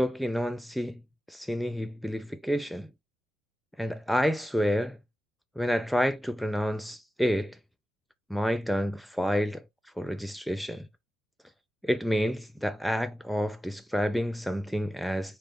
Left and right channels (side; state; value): both; normal; correlation 0.94